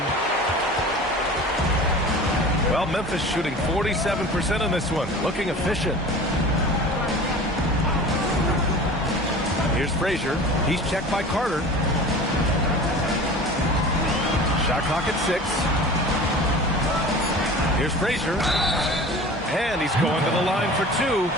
Well, Memphis shooting 47% in this one. Looking efficient. Here's Frazier. He's checked by Carter. Shot clock at 6. Here's Frazier. And he's going to the line for 2.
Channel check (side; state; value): both; normal; correlation 0.38